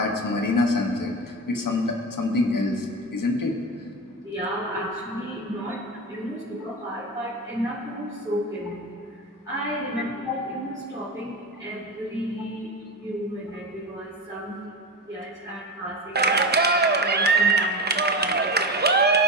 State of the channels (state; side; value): normal; both; correlation 0.22